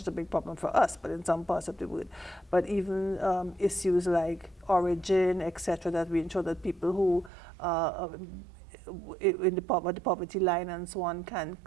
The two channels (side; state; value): left; drops out; at 7.3 s